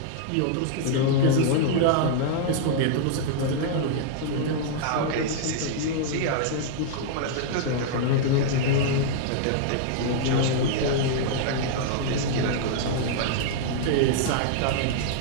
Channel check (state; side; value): different; both; correlation -0.01